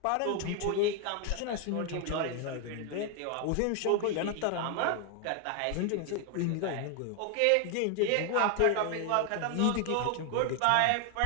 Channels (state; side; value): different; both; correlation 0.00